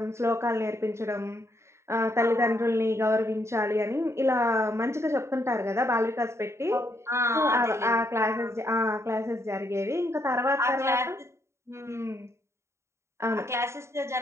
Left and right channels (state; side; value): late; left; 0.13 ms